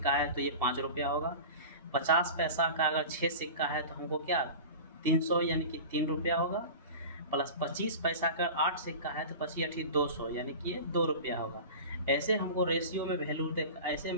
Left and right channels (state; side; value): inverted; both; correlation -0.33